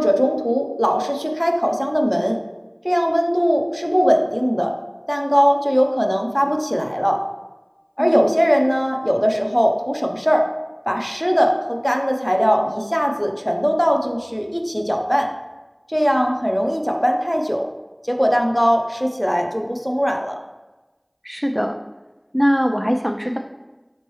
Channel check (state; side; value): identical; both; correlation 1.00